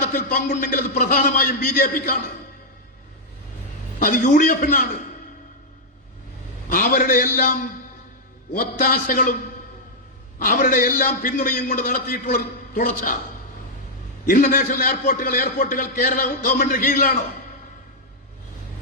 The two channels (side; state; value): both; normal; correlation -0.05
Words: പങ്കുണ്ടെങ്കിൽ അത് പ്രധാനമായും BJPക്കാണ്, അത് UDF-നാണ്. അവരുടെ എല്ലാം ഒത്താശകളും അവരുടെ എല്ലാം പിന്തുണയും കൊണ്ട് നടത്തിയിട്ടുള്ള തുടർച്ച. ഇന്റർനാഷണൽ എയർപോർട്ടുകൾ കേരള ഗവൺമെന്റിന് കീഴിലാണോ?